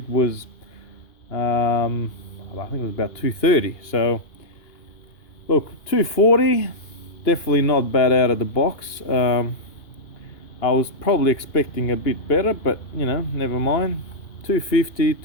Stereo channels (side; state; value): right; late; 2.8 ms